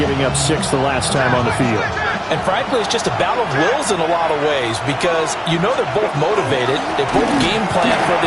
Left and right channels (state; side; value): identical; both; correlation 1.00